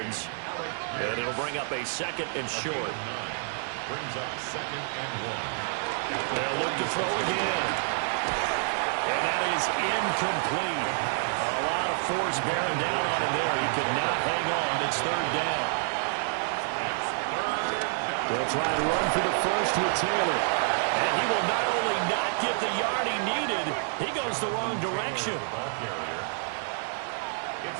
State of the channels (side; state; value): left; silent; 59 dB below the other